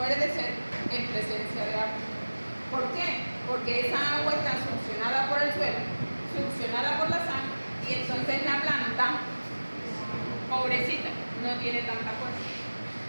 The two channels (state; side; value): inverted; both; correlation -1.00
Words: de sed en presencia de agua. ¿Por qué? Porque esa agua está succionada por el suelo, succionada por la sal, y entonces la planta, pobrecita, no tiene tanta fuerza.